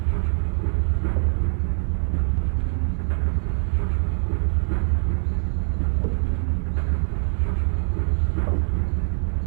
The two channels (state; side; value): silent; left; 63 dB below the other